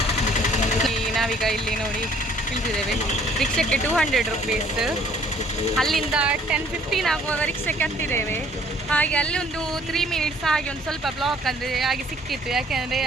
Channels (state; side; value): normal; both; correlation 0.59